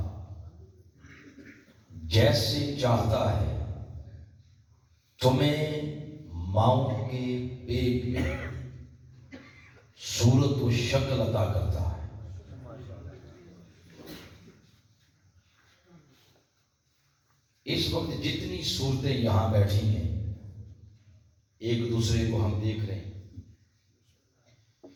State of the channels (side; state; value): both; identical; correlation 1.00